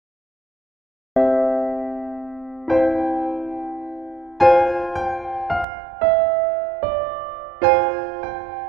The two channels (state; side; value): drops out; left; at 5.7 s